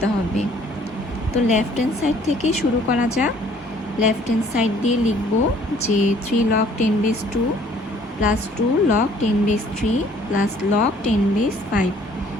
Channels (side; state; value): both; normal; correlation 0.58